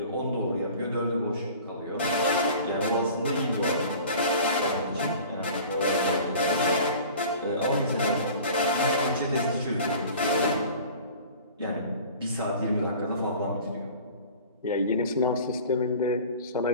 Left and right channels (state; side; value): inverted; both; correlation -0.43